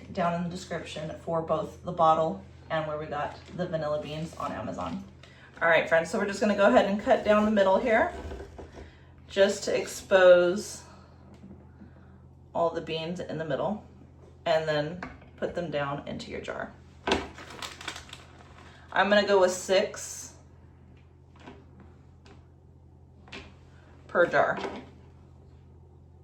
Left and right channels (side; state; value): both; identical; correlation 1.00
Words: down in the description for both the bottle and where we got the vanilla beans on Amazon. All right, friends, so we're just gonna go ahead and cut down the middle here just to expose all the beans in the middle and then put them down into your jar. I'm gonna go with 6 per jar.